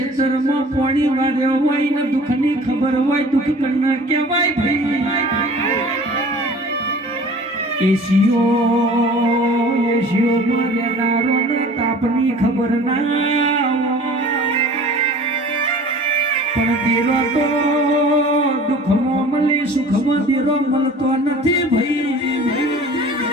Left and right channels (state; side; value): normal; both; correlation 0.45